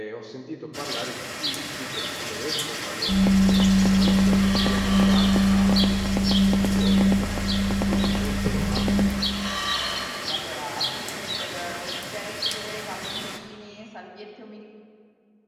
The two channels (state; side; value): identical; both; correlation 1.00